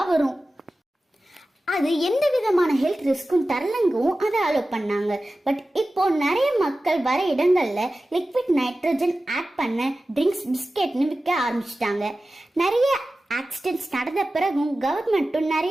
வரும். அது எந்த விதமான ஹெல்த் ரிஸ்க்கும் தரலங்கவும் அதை அலோ பண்ணாங்க. பட் இப்போ நிறைய மக்கள் வர இடங்கள்ல லிக்விட் நைட்ரஜன் ஆட் பண்ண ட்ரிங்க்ஸ், பிஸ்கெட்னு விற்க ஆரம்பிச்சிட்டாங்க. நிறைய ஆக்சிடென்ட்ஸ் நடந்த பிறகும் கவர்மெண்ட்டும்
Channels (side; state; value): both; normal; correlation 0.95